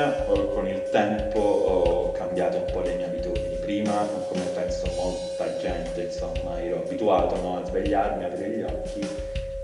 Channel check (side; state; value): both; identical; correlation 1.00